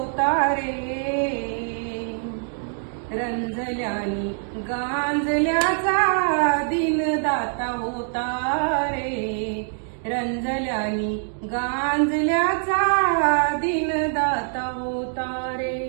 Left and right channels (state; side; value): silent; left; digital silence